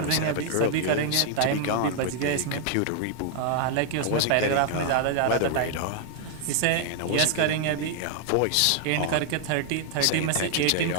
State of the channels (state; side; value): different; both; correlation 0.00